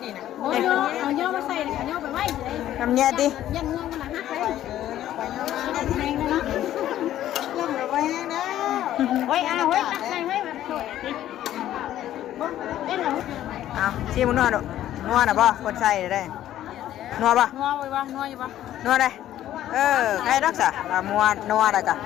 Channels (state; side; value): quieter; right; 12.5 dB